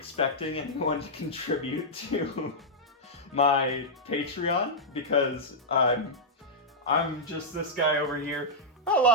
anyone to contribute to my Patreon, because I'm just this guy over here,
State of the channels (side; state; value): both; normal; correlation -0.08